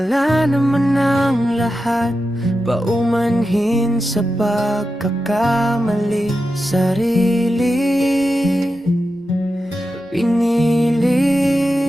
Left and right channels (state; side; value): normal; both; correlation 0.90